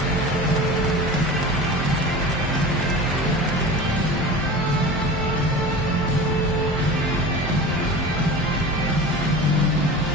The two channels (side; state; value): both; normal; correlation 0.34